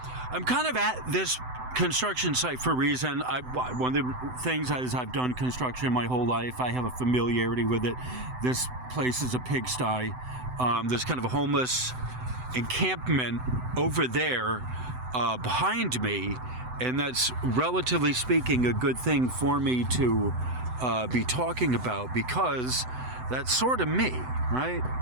kind of at this construction site for a reason. One of the things is I've done construction my whole life. I have a familiarity with it. This place is a pigsty. There's kind of a homeless encampment over there behind me, and that's, relatively speaking, a good thing for me to be talking about, because that's sort of me, right?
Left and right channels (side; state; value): left; late; 7.9 ms